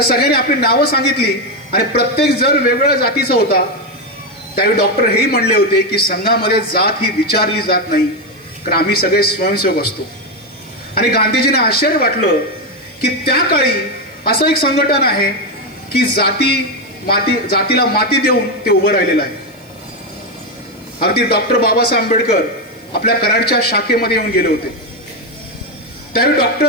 सगळ्यांनी आपली नावं सांगितली आणि प्रत्येक जण वेगवेगळ्या जातीचा होता. त्यावेळी डॉक्टर हेही म्हणले होते की संघामध्ये जात ही विचारली जात नाही, कारण आम्ही सगळे स्वयंसेवक असतो. आणि गांधीजींना आश्चर्य वाटलं की त्या काळी असं एक संघटन आहे की जातीला माती देऊन ते उभं राहिलेलं आहे. अगदी डॉक्टर बाबासाहेब आंबेडकर आपल्या कराडच्या शाखेमध्ये येऊन गेले होते. त्यावेळी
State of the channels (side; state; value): right; noise; hiss, 30 dB below the sound